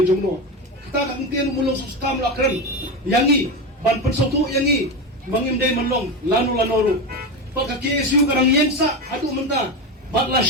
jongno. Kita kakentin umulong sa sultam lakren. Yangi, ban pensotu yangi. Bangin day manlong, lano-lanoro. Pagka-KSU karang yensa, adu menta. Batla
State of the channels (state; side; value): normal; both; correlation 0.18